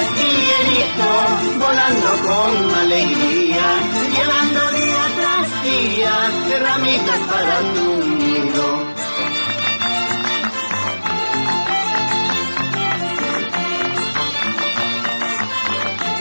Guillerito, volando con alegría, llevando día tras día ramitas para tu nido?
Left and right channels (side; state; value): both; inverted; correlation -1.00